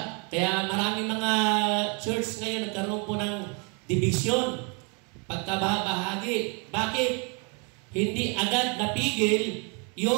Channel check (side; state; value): left; quieter; 35.1 dB